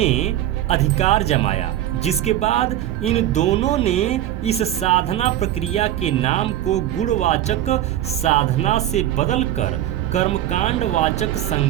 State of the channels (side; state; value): left; quieter; 12.7 dB